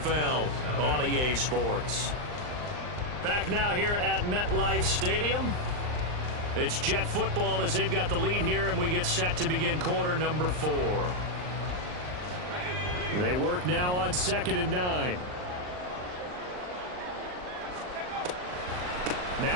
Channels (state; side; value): late; left; 39 ms